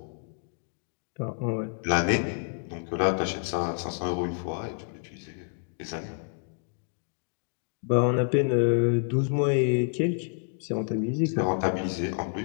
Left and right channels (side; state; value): right; silent; 59 dB below the other